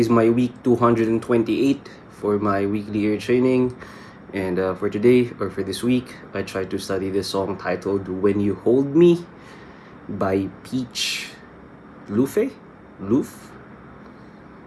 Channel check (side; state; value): both; identical; correlation 1.00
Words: my week 228 for my weekly ear training. And for today, or for this week, I tried to study this song titled When You Hold Me by Peach Luffe? Luffe?